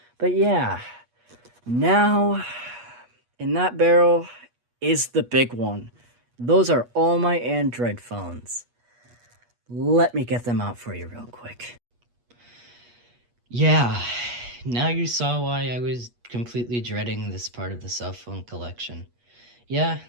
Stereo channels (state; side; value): late; left; 8.3 ms